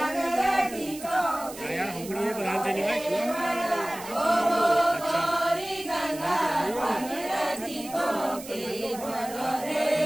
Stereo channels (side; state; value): right; noise; hiss, 14 dB below the sound